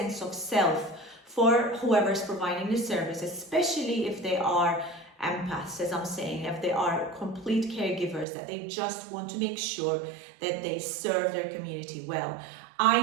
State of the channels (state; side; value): drops out; left; at 8.2 s